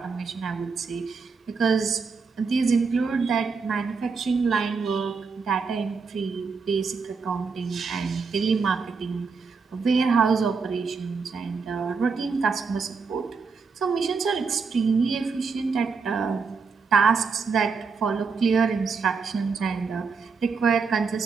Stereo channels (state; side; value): quieter; left; 5.0 dB